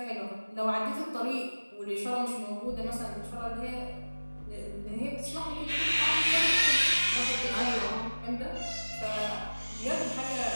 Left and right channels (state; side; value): inverted; both; correlation -1.00